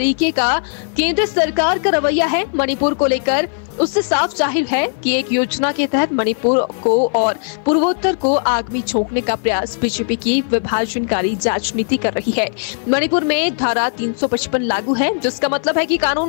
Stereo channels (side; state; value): right; silent; 56 dB below the other